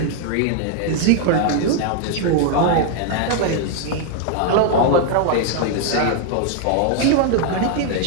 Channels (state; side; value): different; both; correlation 0.00